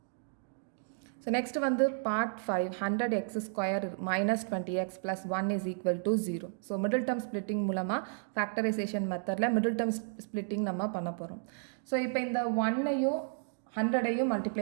ஸோ நெக்ஸ்ட் வந்து part 5, 100x² minus 20x plus 1 is equal to 0. So middle term splitting மூலமாக ஃபேக்டரைசேஷன் மெத்தடில் மிடில் டேர்ம் ஸ்ப்ளிட்டிங் நம்ம பண்ண போகிறோம். ஸோ இப்போ இந்த 1ஐயும் 100ஐயும்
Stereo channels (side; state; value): left; silent; digital silence